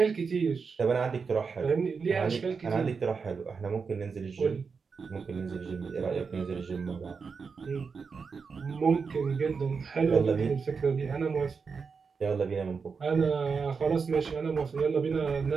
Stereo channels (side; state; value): left; quieter; 5.3 dB